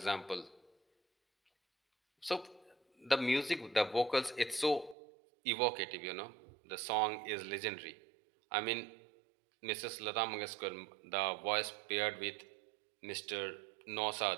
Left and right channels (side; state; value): left; drops out; at 5.0 s